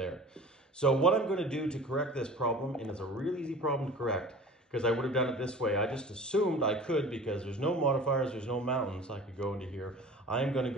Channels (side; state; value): both; normal; correlation 0.41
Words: So what I'm going to do to correct this problem, and it's a really easy problem to correct, because I would have done it this way. I just assumed I could, because there's no modifiers, there's no mountains, I could go into here. I'm going to